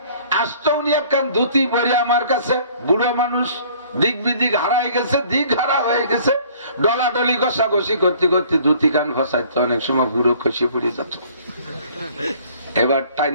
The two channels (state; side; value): inverted; both; correlation -0.54